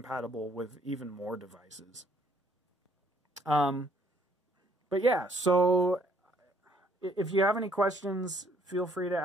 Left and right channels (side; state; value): both; normal; correlation 0.65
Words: with even more devices. But yeah, so if you have any questions, feel free to